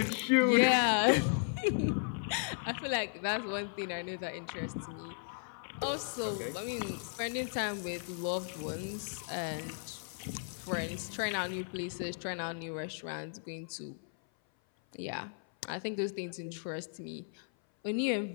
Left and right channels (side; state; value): right; silent; 54 dB below the other